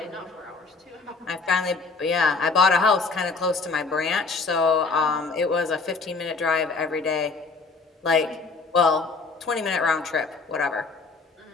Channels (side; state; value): right; quieter; 4.2 dB